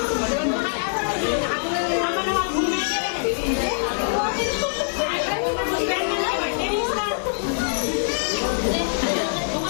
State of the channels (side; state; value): right; silent; digital silence